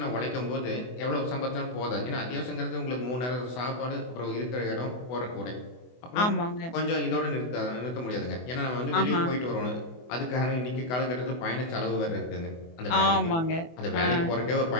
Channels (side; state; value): right; late; 24 ms